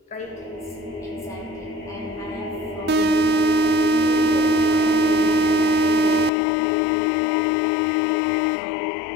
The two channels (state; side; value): drops out; right; at 6.3 s